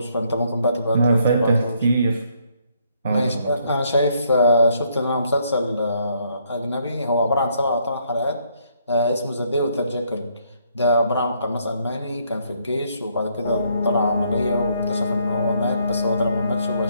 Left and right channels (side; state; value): both; inverted; correlation -0.70